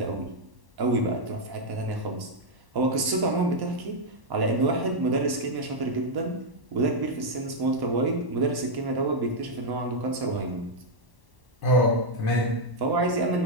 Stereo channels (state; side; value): late; left; 1.1 ms